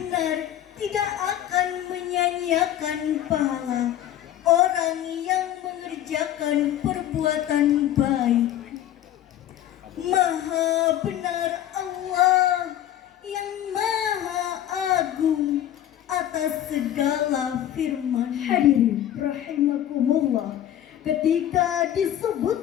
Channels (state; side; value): quieter; right; 11.7 dB